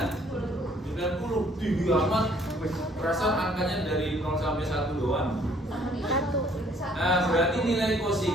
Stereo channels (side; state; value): both; normal; correlation 0.62